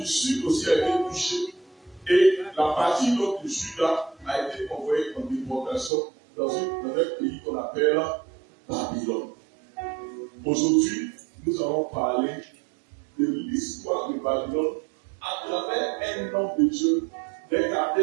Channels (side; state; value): left; drops out; at 5.9 s